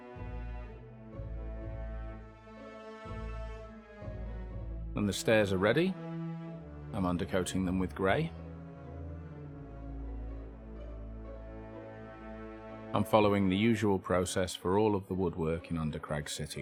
When the stairs are ready, I'm undercoating them with grey. I'm following the usual process for all of the woodwork in Undercrag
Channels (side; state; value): both; identical; correlation 1.00